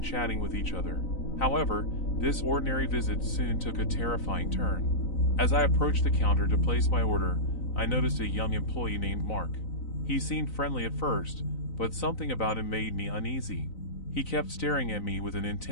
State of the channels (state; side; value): late; right; 3.9 ms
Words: chatting with each other. However, this ordinary visit soon took a terrifying turn. As I approached the counter to place my order, I noticed a young employee named Mark. He seemed friendly at first, but something about him made me uneasy. He kept staring at me with an